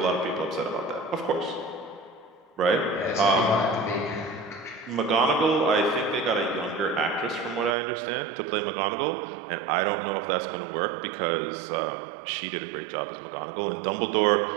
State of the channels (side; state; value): left; drops out; at 7.8 s